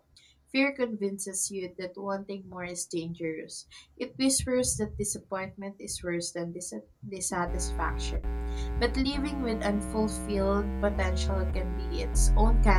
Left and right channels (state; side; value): identical; both; correlation 1.00